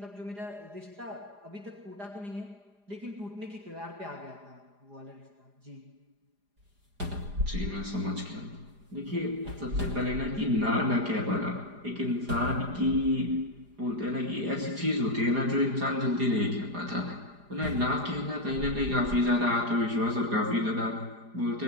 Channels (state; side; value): late; left; 4.9 ms